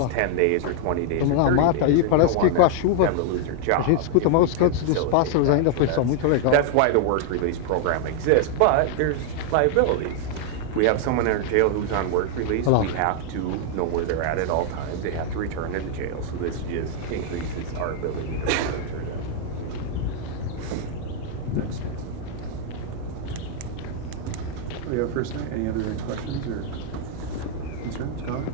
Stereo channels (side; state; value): both; different; correlation 0.00